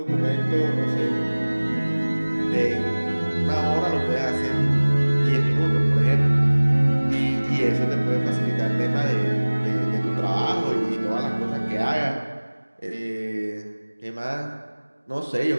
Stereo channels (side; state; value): both; inverted; correlation -1.00